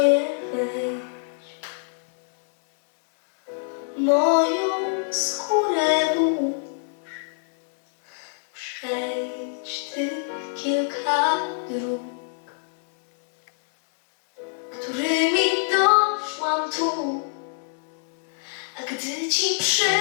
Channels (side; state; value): right; silent; digital silence